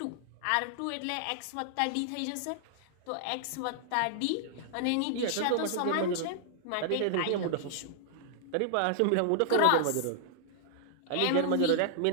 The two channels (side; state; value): both; different; correlation -0.01